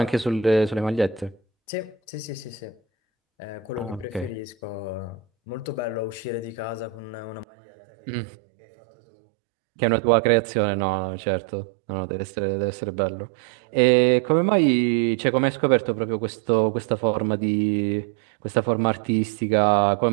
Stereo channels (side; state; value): left; drops out; at 7.5 s